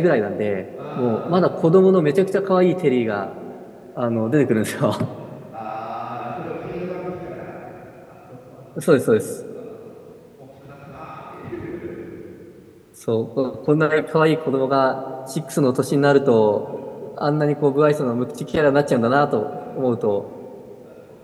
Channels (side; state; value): both; identical; correlation 1.00